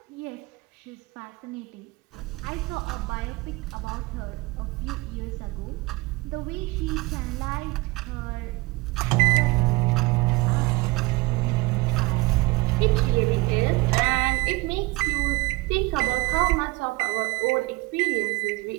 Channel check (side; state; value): left; quieter; 23.3 dB